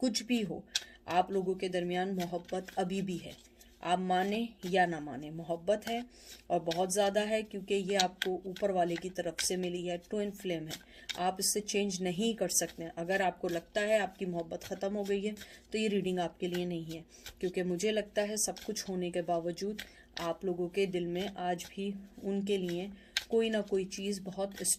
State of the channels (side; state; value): both; identical; correlation 1.00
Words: भी हो, आप लोगों के दरमियान मोहब्बत अभी भी है। आप माने या ना माने, मोहब्बत है और बहुत ज़्यादा है, क्योंकि ये आपको ऊपर वाले की तरफ से मिली है, ट्विन फ्लेम है। आप इससे चेंज नहीं कर सकते। अगर आपको लगता है आपकी मोहब्बत ख़त्म हो गई है तो ये रीडिंग आपके लिए नहीं है, क्योंकि मुझे लगता है सब कुछ होने के बावजूद आप लोगों के दिल में आज भी उनके लिए कोई ना कोई चीज़ बहुत